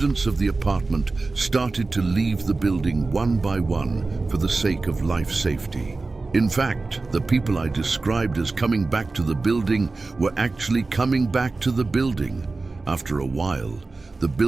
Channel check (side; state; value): left; quieter; 3.6 dB